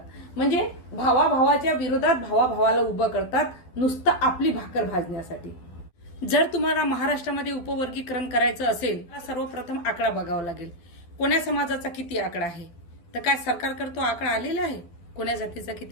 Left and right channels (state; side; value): late; right; 12 ms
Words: म्हणजे भावाभावाच्या विरोधात भावाभावाला उभं करतात नुसतं आपली भाकर भाजण्यासाठी। जर तुम्हाला महाराष्ट्रामध्ये उपवर्गीकरण करायचं असेल तर सर्वप्रथम आकडा बघावा लागेल, कोण्या समाजाचा किती आकडा आहे। तर काय सरकारकडे तो आकडा आलेला आहे, कोण्या जातीचा